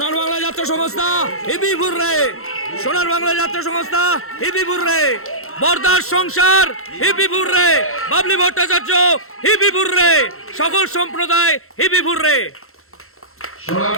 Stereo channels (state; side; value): late; right; 0.62 ms